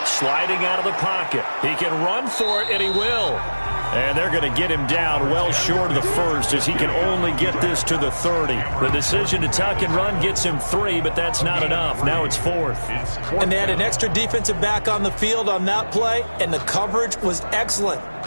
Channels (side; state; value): both; inverted; correlation -1.00